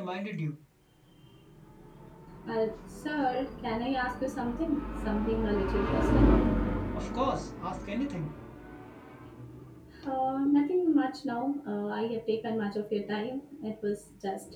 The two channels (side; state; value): both; identical; correlation 1.00